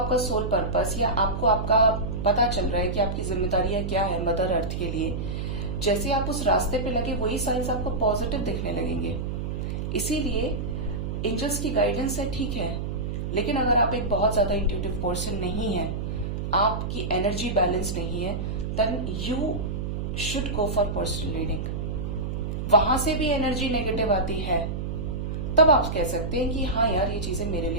सोल पर्पस या आपको आपका पता चल रहा है कि आपकी जिम्मेदारियां क्या है मदर अर्थ के लिए। जैसे आप उस रास्ते पे लगे वही साइंस आपको पॉजिटिव दिखने लगेंगे। इसीलिए एंजल्स की गाइडेंस है, ठीक है, लेकिन अगर आप एक बहुत ज्यादा इंट्यूटिव पर्सन नहीं है, आपकी एनर्जी बैलेंस नहीं है, then you should go for personal reading. वहां से भी एनर्जी नेगेटिव आती है, तब आप कह सकते हैं कि हाँ यार ये चीजें मेरे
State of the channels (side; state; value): right; noise; hum, 3 dB below the sound